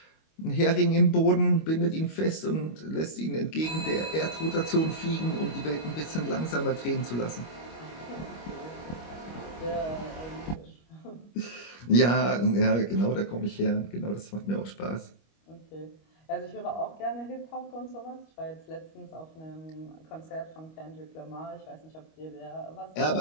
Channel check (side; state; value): right; late; 25 ms